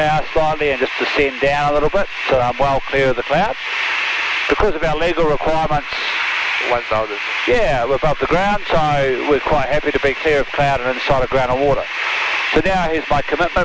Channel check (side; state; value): both; identical; correlation 1.00